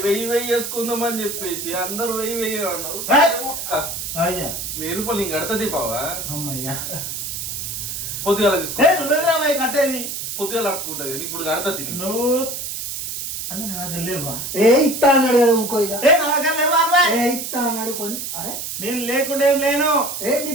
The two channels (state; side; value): noise; right; hiss, 5 dB below the sound